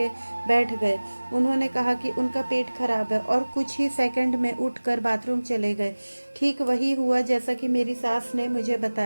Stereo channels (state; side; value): inverted; both; correlation -1.00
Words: बैठ गए। उन्होंने कहा कि उनका पेट खराब है और कुछ ही सेकंड में उठकर बाथरूम चले गए। ठीक वही हुआ जैसा कि मेरी सास ने मुझे